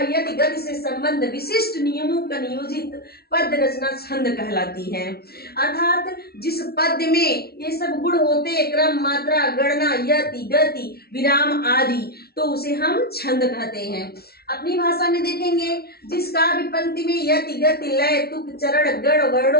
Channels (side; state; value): right; late; 0.45 ms